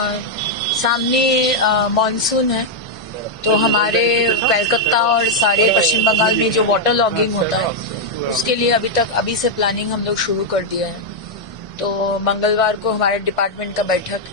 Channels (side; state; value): both; normal; correlation -0.02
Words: सामने मानसून है, तो हमारे कलकत्ता और सारे पश्चिम बंगाल में जो वाटर लॉगिंग होता है उसके लिए अभी से प्लानिंग हम लोग शुरू कर दिया है। तो मंगलवार को हमारे डिपार्टमेंट का बैठक